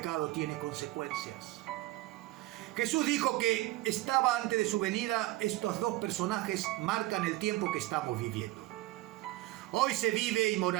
tiene consecuencias. Jesús dijo que estaba antes de su venida. Estos dos personajes marcan el tiempo que estamos viviendo. Hoy se vive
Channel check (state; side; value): quieter; left; 18.2 dB